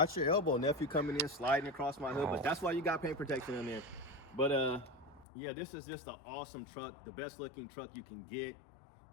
your elbow, nephew, coming in, sliding across my hood, but that's why you got paint protection in there. But yeah, this is just an awesome truck. The best looking truck you can get,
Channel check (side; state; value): right; drops out; at 5.2 s